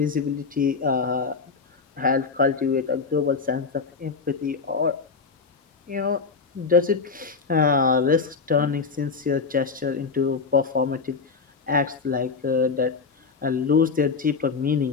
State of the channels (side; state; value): right; quieter; 4.8 dB